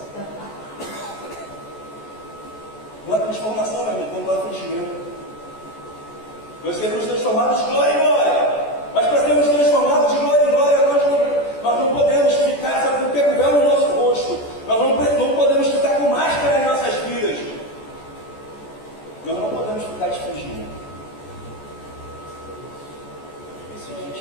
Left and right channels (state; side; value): late; right; 14 ms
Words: Não há transformação, meu irmão, quando há fingimento. Nós seremos transformados de glória em glória. Mas para sermos transformados de glória em glória, nós não podemos ficar, sabe, com o pé no nosso rosto. Nós não podemos ficar com máscara em nossas vidas. Nós não podemos ficar de fingimento.